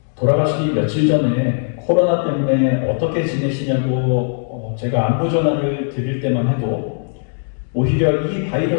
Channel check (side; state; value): right; silent; 67 dB below the other